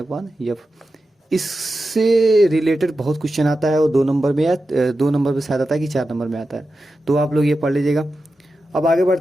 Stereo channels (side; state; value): both; normal; correlation 0.91